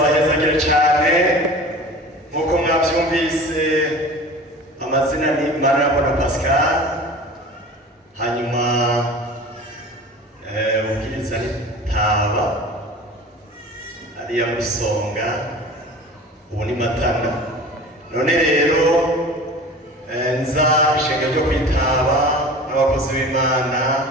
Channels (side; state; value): both; normal; correlation 0.39